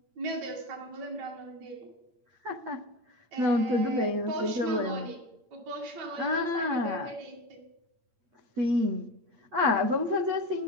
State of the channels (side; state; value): left; late; 8.7 ms